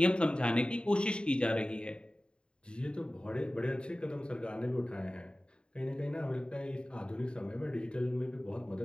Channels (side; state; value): right; late; 0.051 ms